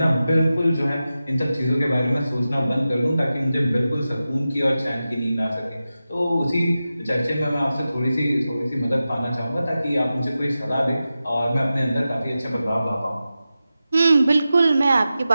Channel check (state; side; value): inverted; both; correlation -0.93